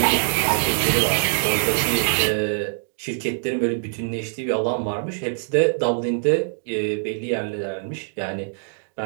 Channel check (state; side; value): silent; left; digital silence